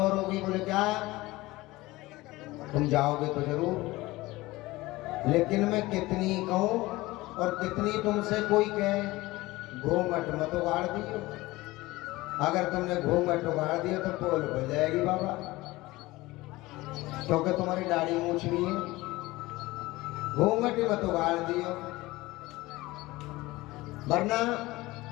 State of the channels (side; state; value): right; quieter; 19.7 dB